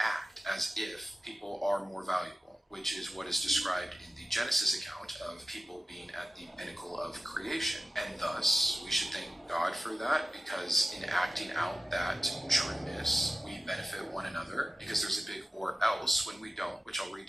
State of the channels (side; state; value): both; normal; correlation 0.95